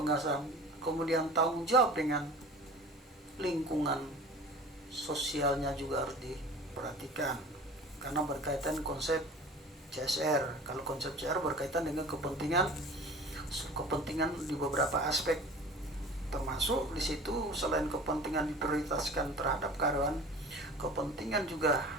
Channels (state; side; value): normal; both; correlation 0.41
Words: kemudian tanggung jawab dengan lingkungan sosialnya juga harus diperhatikan karena berkaitan konsep CSR. Kalau konsep CSR berkaitan dengan kepentingan di beberapa aspek, termasuk di situ selain kepentingan diprioritaskan terhadap karyawan, kepentingan juga